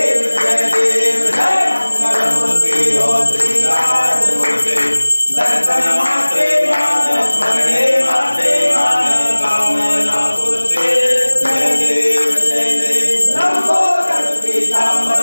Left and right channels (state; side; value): inverted; both; correlation -1.00